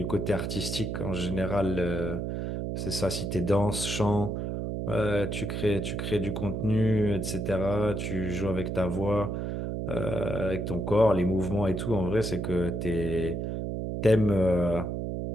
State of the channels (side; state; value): right; noise; hum, 3 dB below the sound